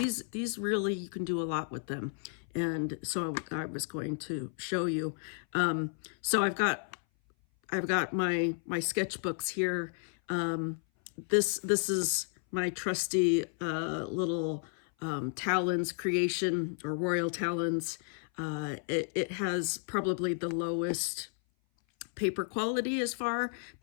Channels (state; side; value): silent; right; 56 dB below the other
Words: really, you can do a lot with them. And so I was going to show you. So I've got my sketchbooks here. This is my trusty little Talens creation, or Royal Talens. It has probably the lowest paper quality as far,